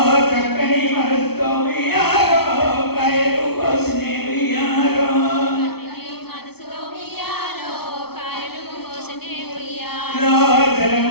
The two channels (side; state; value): right; late; 0.96 ms